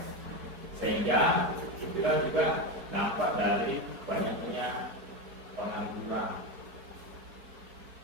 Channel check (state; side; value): late; left; 4.7 ms